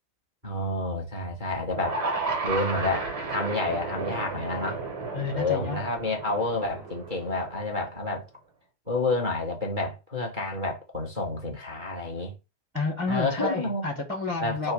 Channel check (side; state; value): left; late; 2.3 ms